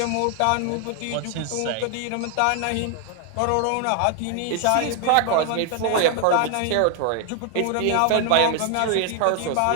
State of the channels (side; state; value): both; different; correlation 0.00